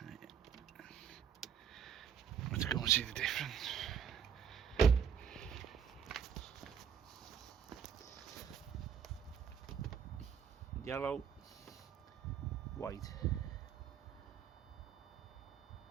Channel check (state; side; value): quieter; left; 7.7 dB